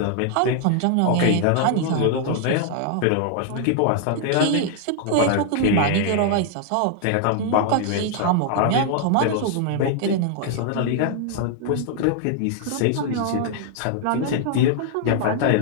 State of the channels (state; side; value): different; both; correlation 0.00